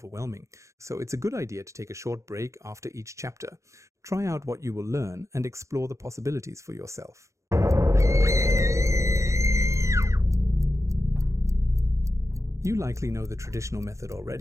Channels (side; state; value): left; late; 0.15 ms